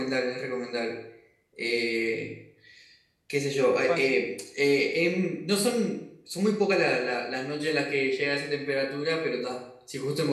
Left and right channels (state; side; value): identical; both; correlation 1.00